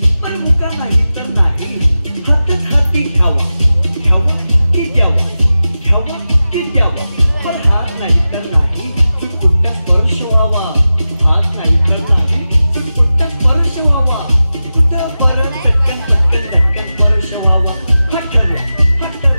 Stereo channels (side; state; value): both; inverted; correlation -0.94